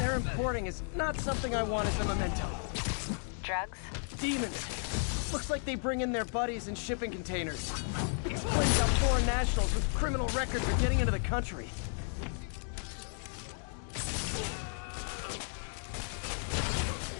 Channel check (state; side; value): silent; right; 55 dB below the other